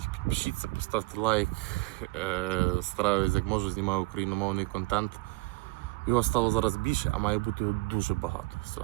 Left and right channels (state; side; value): quieter; left; 23.2 dB